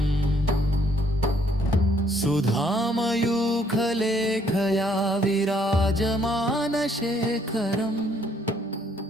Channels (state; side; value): normal; both; correlation 0.67